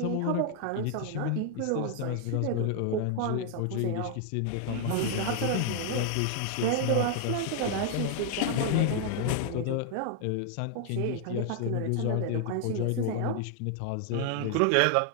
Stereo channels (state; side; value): different; both; correlation 0.00